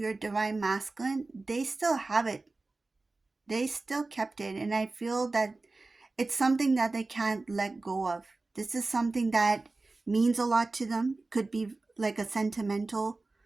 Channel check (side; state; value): left; quieter; 3.4 dB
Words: divine masculine, they still have it. They still kept it. And I feel that it's something that they can't let go of. This is something that means a lot to them. Could be like a sentimental